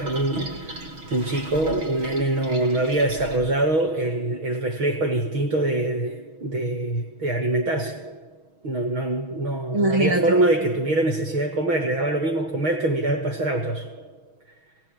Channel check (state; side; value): late; left; 6.3 ms